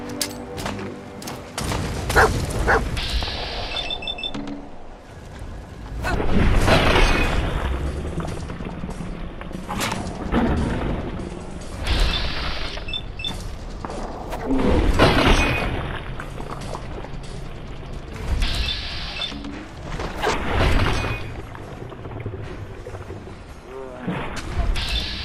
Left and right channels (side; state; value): both; identical; correlation 1.00